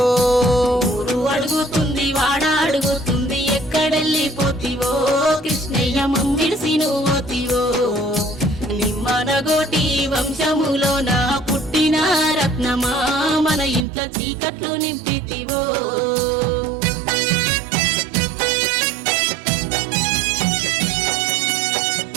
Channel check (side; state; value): left; drops out; at 13.9 s